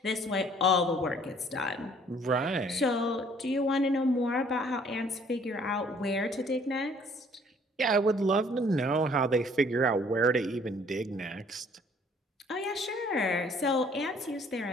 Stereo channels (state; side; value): normal; both; correlation 0.59